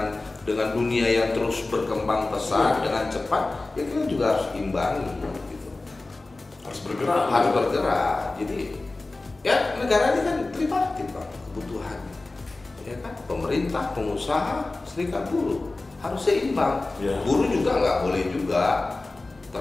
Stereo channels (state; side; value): quieter; right; 3.2 dB